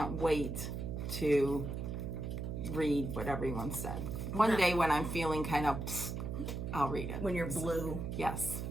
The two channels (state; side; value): noise; right; hum, 4 dB below the sound